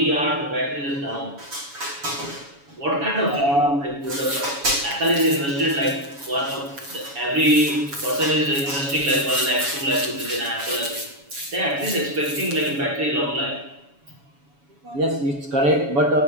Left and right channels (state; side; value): late; left; 7.1 ms